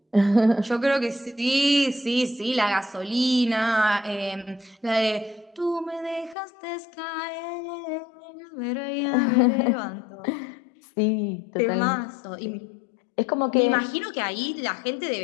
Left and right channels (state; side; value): drops out; right; at 6.4 s